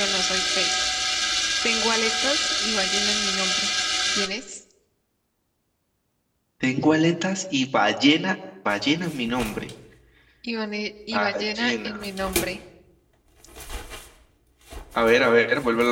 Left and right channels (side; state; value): both; identical; correlation 1.00